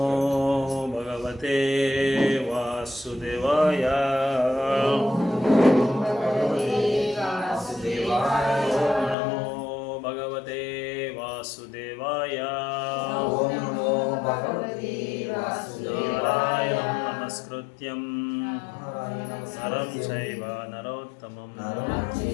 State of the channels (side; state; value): right; drops out; at 9.2 s